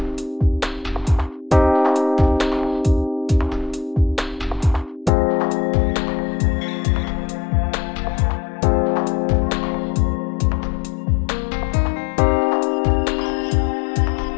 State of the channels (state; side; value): drops out; right; at 5.1 s